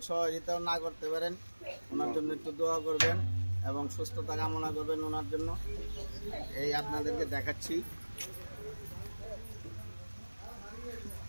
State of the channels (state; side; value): inverted; both; correlation -1.00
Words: সহযোগিতাও না করতে পারেন, ওনার জন্য একটু দোয়া করবেন এবং সুস্থতা কামনা করবেন ওনার জন্য। এই আপনাদেরকে দেখাচ্ছি।